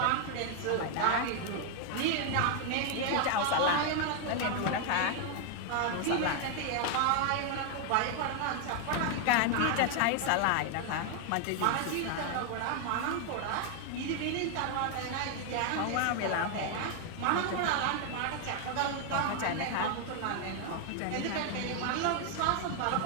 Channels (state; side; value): different; both; correlation 0.00